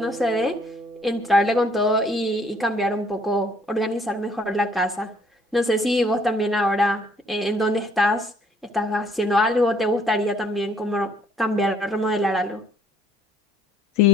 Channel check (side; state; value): both; normal; correlation 0.62